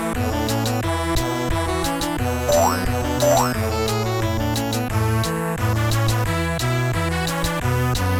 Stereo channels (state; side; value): identical; both; correlation 1.00